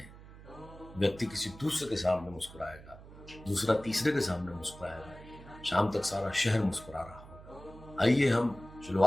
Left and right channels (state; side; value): noise; right; hum, 18 dB below the sound